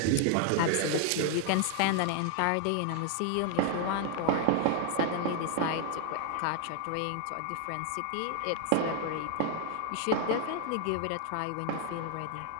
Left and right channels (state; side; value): different; both; correlation 0.00